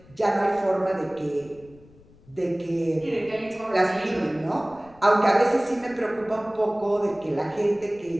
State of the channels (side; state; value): left; noise; rumble, 26 dB below the sound